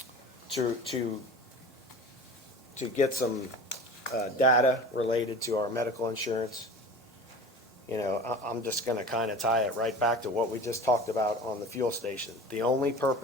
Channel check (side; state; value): both; normal; correlation 0.37